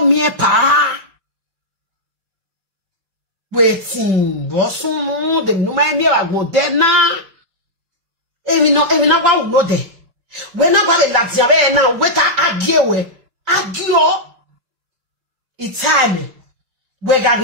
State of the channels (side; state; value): left; late; 5.2 ms